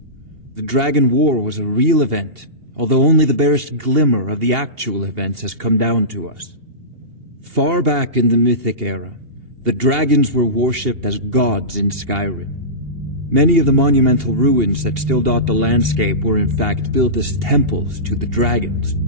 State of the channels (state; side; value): late; left; 2.8 ms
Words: The Dragon War was a real event, although only the barest glimmer of the actual events has come down to us. Far back in the Mythic era, the dragons were worshipped as gods in Skyrim. Many of the monumental ruins that still dot the landscape were in fact built as temples to the dragons.